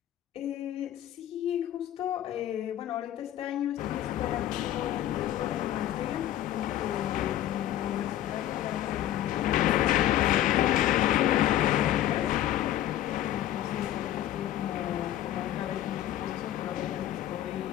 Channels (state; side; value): quieter; right; 12.7 dB